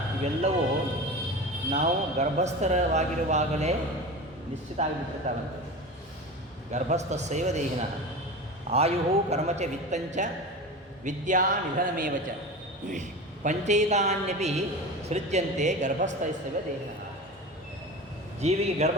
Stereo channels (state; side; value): normal; both; correlation 0.30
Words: ಇವೆಲ್ಲವೂ ನಾವು ಗರ್ಭಸ್ಥರವಾಗಿರುವಾಗಲೇ ನಿಶ್ಚಿತ ಆಗಿಬಿಟ್ಟಿರ್ತಾವಂತೆ. ಗರ್ಭಸ್ಥಸ್ಯೈವ ದೇಹಿನ ಆಯು ಕರ್ಮಚ ವಿತ್ತಂಚ ವಿದ್ಯಾ ನಿಧನಮೇವ ಚ ಪಂಚೈತಾನ್ಯಪಿ ಸೃಜ್ಯಂತೆ ಗರ್ಭಸ್ಥೈಸ್ತವ ದೇಹಿನ. ಜೀವಿಗೆ